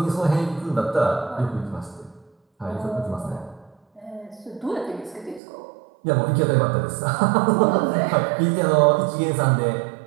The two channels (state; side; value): drops out; left; at 5.4 s